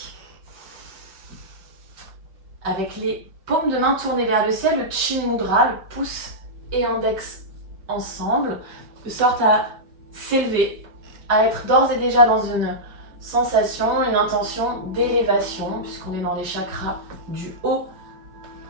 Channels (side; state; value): left; late; 5.2 ms